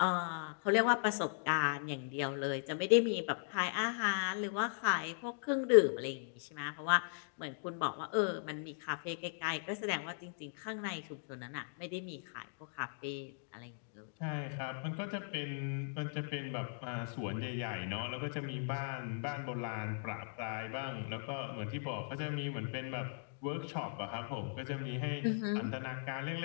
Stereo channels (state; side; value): silent; right; digital silence